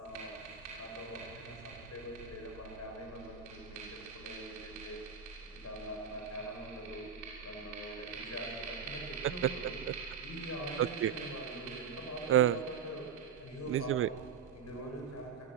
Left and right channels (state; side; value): quieter; left; 7.2 dB